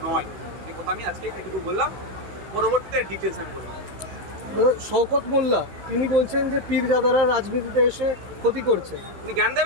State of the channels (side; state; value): left; late; 16 ms